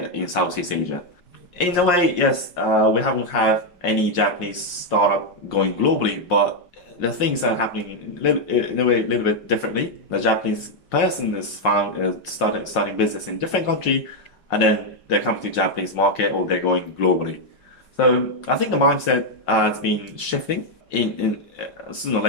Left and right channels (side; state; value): right; late; 5.6 ms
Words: in Southeast Asia. In a way, yes, we haven't had any Japanese startup going globally, but the things are happening in a way a little bit differently. The Japanese person is starting business in different country, and then they're coming to Japanese market or they're going globally. So I think the mindset has been shifting. In sooner or